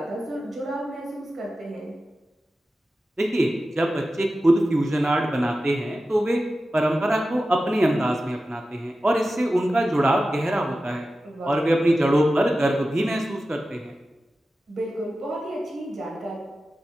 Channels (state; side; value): normal; both; correlation 0.94